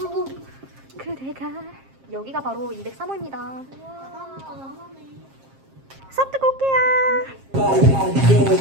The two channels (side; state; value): left; late; 7.5 ms